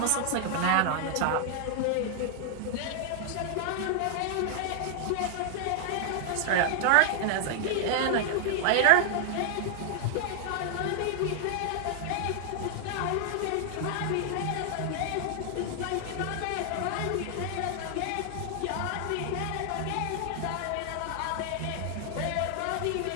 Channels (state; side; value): different; both; correlation 0.00